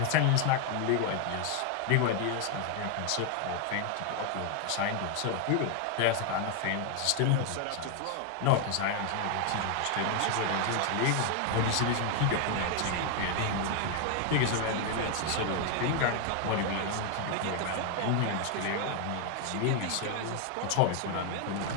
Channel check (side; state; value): both; different; correlation 0.01